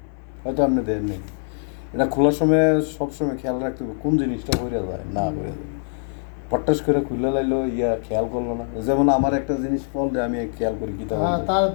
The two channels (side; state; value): right; silent; digital silence